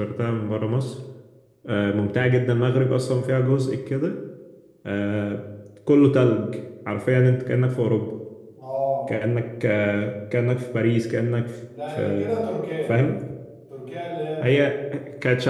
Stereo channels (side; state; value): both; identical; correlation 1.00